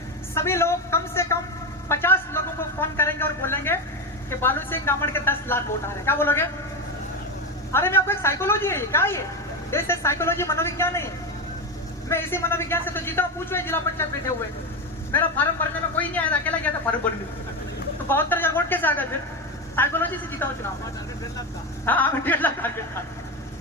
सभी लोग कम से कम 50 लोगों को फोन करेंगे और बोलेंगे कि बालू सिंह गमड़ के 10 लाख वोट आ रहे हैं। क्या बोलोगे? अरे मैं आपको एक साइकोलॉजी है, क्या ये देश है, साइकोलॉजी मनोविज्ञान है। मैं इसी मनोविज्ञान से तो जीता हूँ। पूछो जिला पंचायत बैठे हुए, मेरा फार्म भरने में कोई नहीं आया था, अकेला गया था फार्म भरने। तो 72,000 वोट कैसे आ गए? फिर साइकोलॉजी से जीता हूँ चुनाव। हाँ, 1.5 लाख टारगेट था,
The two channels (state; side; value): normal; both; correlation 0.15